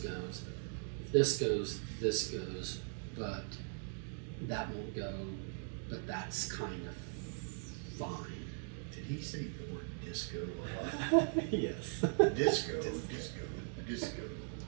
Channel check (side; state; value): left; silent; 51 dB below the other